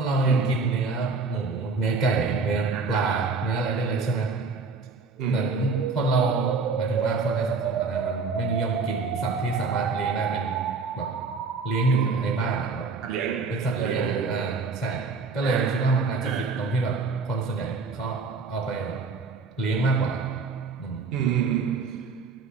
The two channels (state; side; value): quieter; left; 4.5 dB